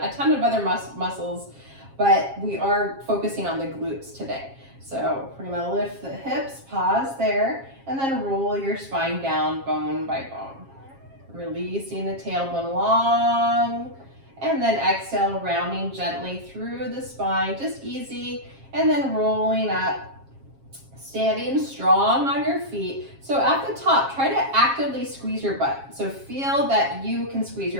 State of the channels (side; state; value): left; late; 7.4 ms